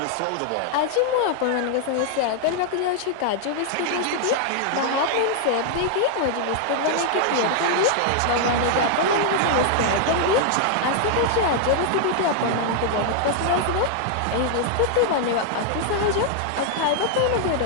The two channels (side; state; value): both; different; correlation -0.01